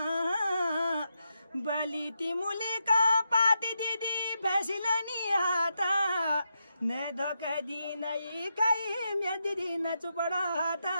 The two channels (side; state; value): both; inverted; correlation -0.85